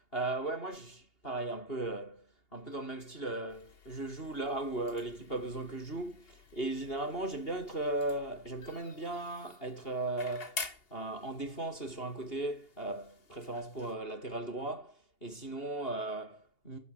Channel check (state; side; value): late; right; 2.8 ms